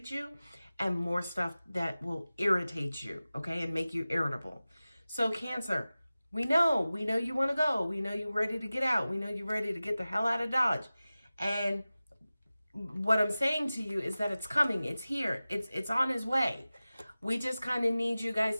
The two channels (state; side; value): inverted; both; correlation -0.96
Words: you and more stuff that will irritate you, okay, and make you irritable. So Cancer, we know you want to go. We know you're ready to get out. We know you're ready to get the hell out of Dodge. And what I'm saying to you is that it's coming. It's here. It's on its way. We just kind of need you